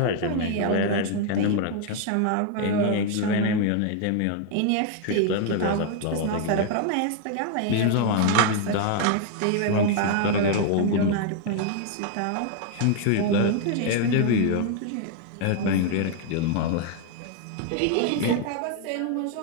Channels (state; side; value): different; both; correlation 0.00